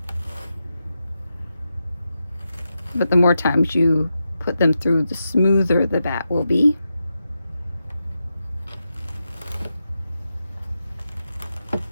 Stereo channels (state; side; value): inverted; both; correlation -0.88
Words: But the more times you put them through, the smoother the batt will be.